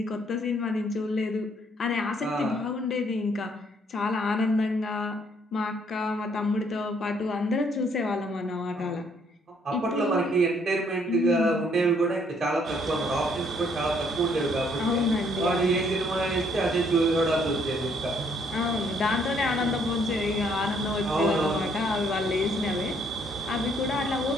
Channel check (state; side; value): normal; both; correlation 0.67